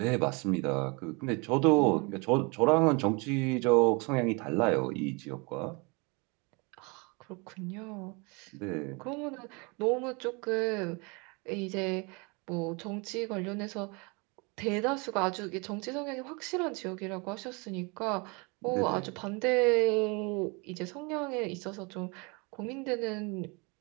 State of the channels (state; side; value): quieter; left; 29.7 dB